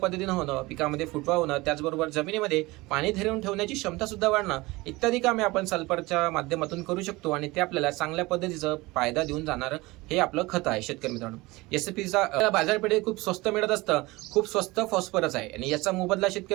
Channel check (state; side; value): quieter; left; 21.7 dB